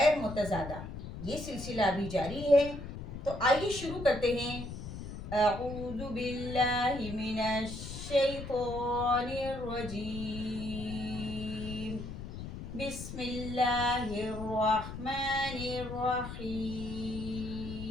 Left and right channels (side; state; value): left; noise; rumble, 9 dB below the sound